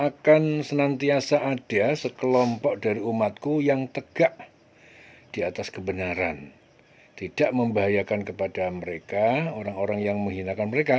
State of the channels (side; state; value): both; identical; correlation 1.00